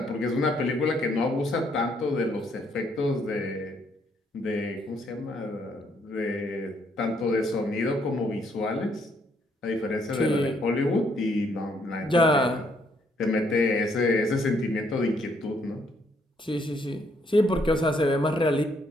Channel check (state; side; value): normal; both; correlation 0.70